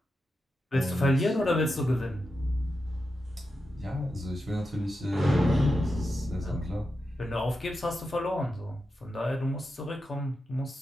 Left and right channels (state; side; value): normal; both; correlation 0.89